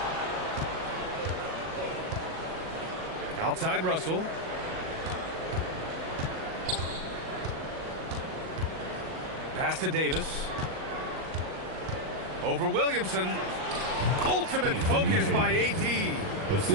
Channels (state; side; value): late; left; 38 ms